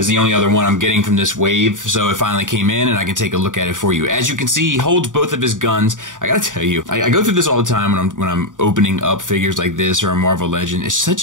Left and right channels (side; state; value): left; late; 0.87 ms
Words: is the only other one I'm getting from this wave, so it finally came in and I can take a look at it for you. As you can see, he holds both of his guns. I gotta tell you, I go through this all the time when I'm opening up figures like this or a Marvel Legend. It's such